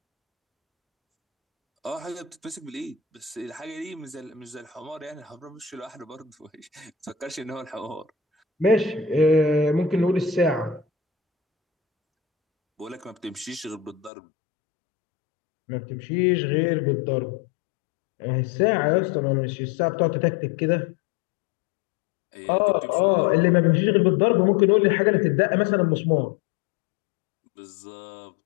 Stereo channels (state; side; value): drops out; right; at 14.1 s